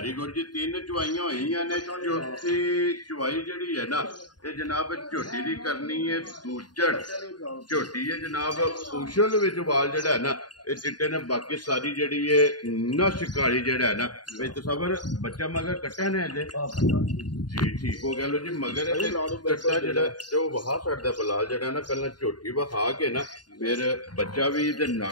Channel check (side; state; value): right; late; 0.70 ms